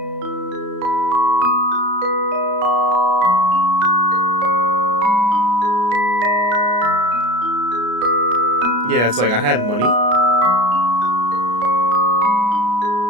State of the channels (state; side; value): late; left; 33 ms